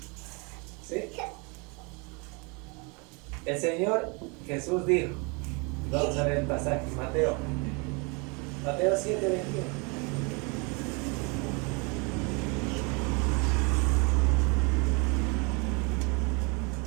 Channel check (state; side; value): quieter; left; 31.3 dB